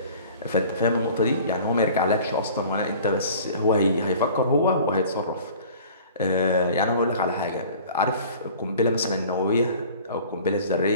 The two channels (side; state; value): both; inverted; correlation -0.46